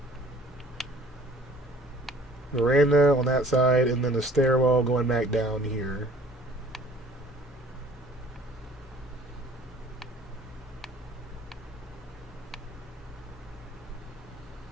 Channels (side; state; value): both; normal; correlation 0.53